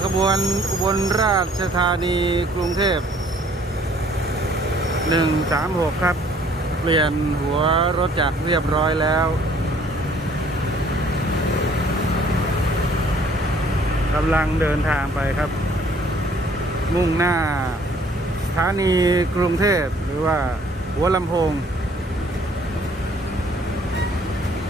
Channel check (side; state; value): both; normal; correlation 0.59